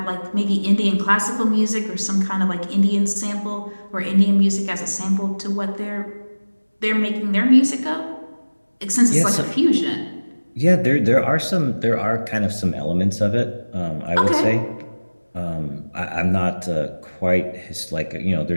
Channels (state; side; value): inverted; both; correlation -1.00